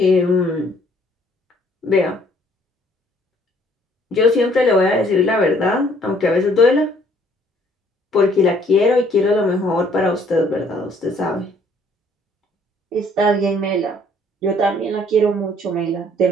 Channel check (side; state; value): both; normal; correlation 0.62